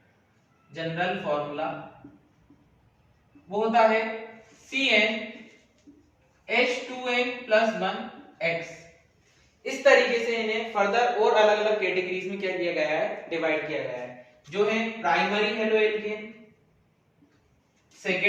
जनरल फॉर्मूला वो होता है CnH2n+1x। इस तरीके से इन्हें फर्दर और अलग अलग कैटेगरीज में क्या किया गया है, डिवाइड किया गया है, जो है primary halo alkane,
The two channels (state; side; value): identical; both; correlation 1.00